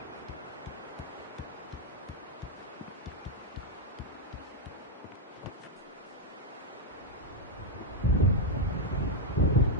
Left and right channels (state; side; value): normal; both; correlation -0.01